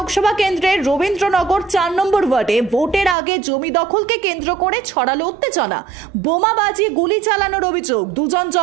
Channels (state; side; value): drops out; left; at 3.2 s